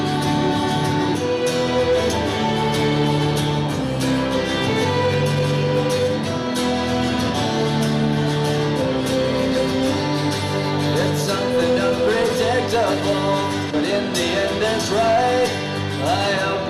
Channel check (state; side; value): identical; both; correlation 1.00